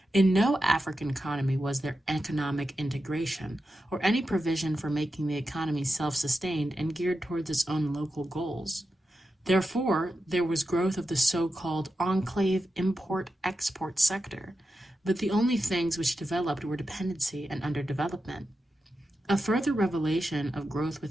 In no African economy was there economic integration, or any provision for making the economy self-sustained and geared towards its own local goals. Therefore, there was growth of the so-called enclave import-export sector, but the only things which developed were dependency and underdevelopment. A further revelation of growth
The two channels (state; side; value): normal; both; correlation 0.90